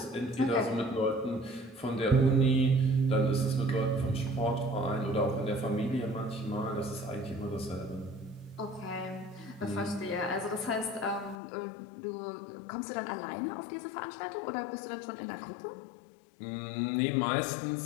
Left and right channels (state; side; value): drops out; right; at 11.4 s